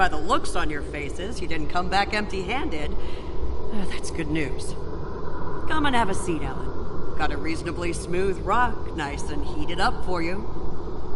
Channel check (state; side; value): identical; both; correlation 1.00